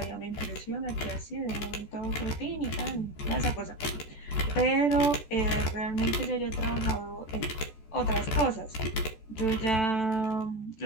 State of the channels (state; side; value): late; right; 14 ms